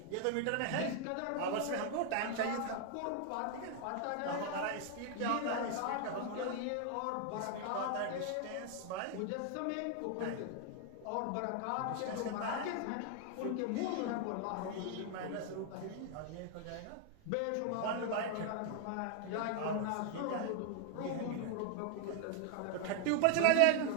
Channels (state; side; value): different; both; correlation 0.00